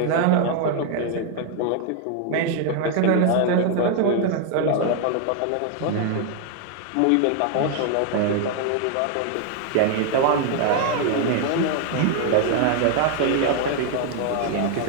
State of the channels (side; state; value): both; different; correlation 0.00